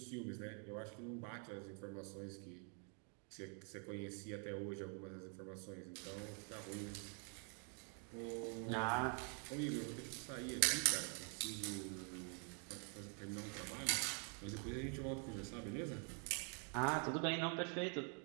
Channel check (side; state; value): left; quieter; 39.9 dB